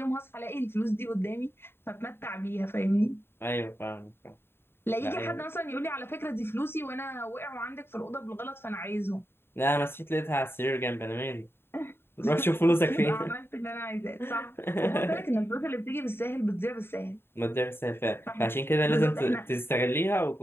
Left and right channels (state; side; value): late; right; 0.11 ms